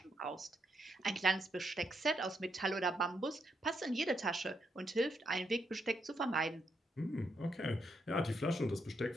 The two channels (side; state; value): both; normal; correlation 0.79